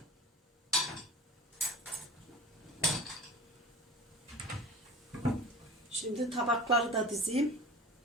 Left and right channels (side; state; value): both; normal; correlation 0.38